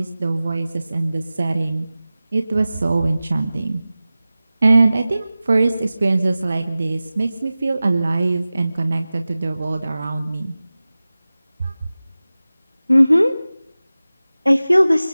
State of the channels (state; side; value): inverted; both; correlation -0.97